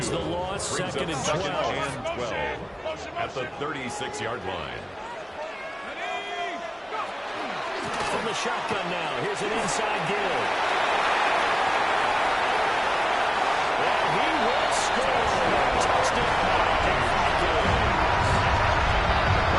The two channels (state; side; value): identical; both; correlation 1.00